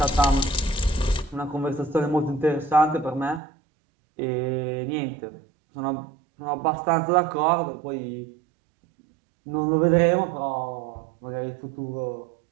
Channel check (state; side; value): drops out; left; at 3.4 s